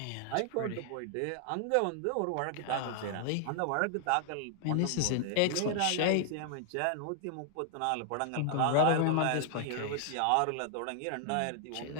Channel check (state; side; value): different; both; correlation 0.00